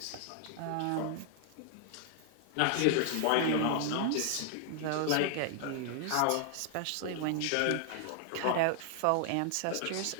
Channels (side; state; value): both; different; correlation 0.00